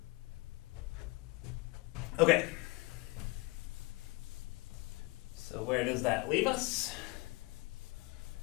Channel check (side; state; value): right; quieter; 24.1 dB